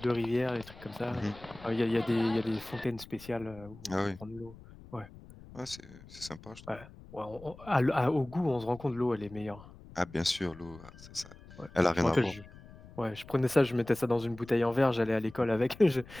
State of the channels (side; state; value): left; noise; rumble, 19 dB below the sound